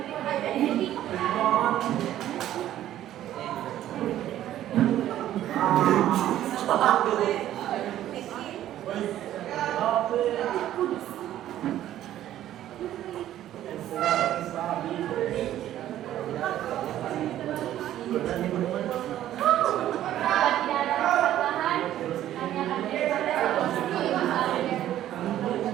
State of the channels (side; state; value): left; quieter; 12.5 dB